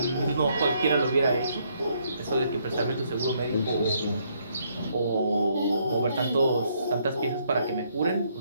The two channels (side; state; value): both; inverted; correlation -0.71